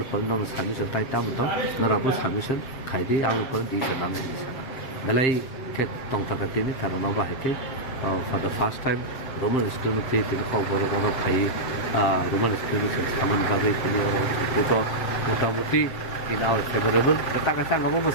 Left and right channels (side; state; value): right; late; 7.5 ms